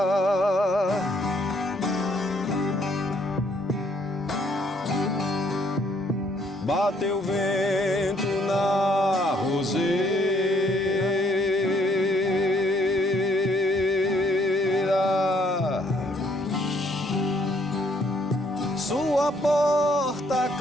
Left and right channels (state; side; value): normal; both; correlation 0.67